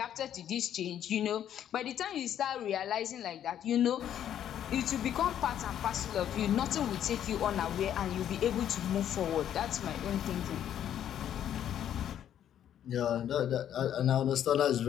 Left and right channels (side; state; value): right; quieter; 10.3 dB